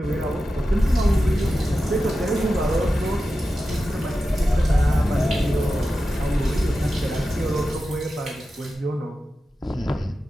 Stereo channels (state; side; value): normal; both; correlation 0.92